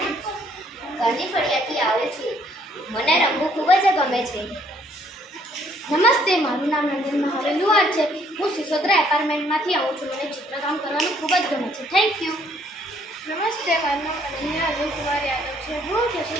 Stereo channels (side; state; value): both; normal; correlation 0.65